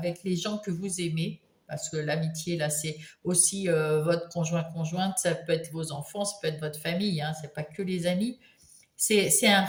les gens que vous aimez. Parce que l'amitié, là, c'est aussi votre conjointe, ça peut être vos enfants, ça peut être votre famille, hein, c'est pas que les amis. C'est un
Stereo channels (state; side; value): identical; both; correlation 1.00